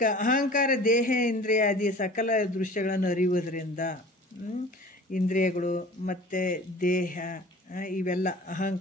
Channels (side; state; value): both; normal; correlation 0.44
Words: ಅಹಂಕಾರ ದೇಹ ಇಂದ್ರಿಯಾದಿ ಸಕಲ ದೃಶ್ಯಗಳನ್ನು ಅರಿಯುವುದರಿಂದ, ಇಂದ್ರಿಯಗಳು ಮತ್ತು ದೇಹ ಇವೆಲ್ಲ